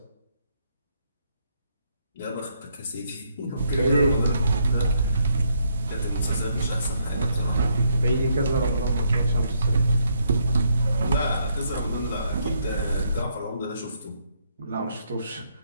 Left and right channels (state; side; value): inverted; both; correlation -0.74